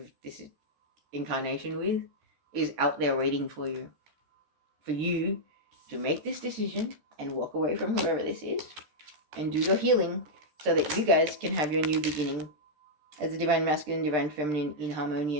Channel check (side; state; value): left; late; 13 ms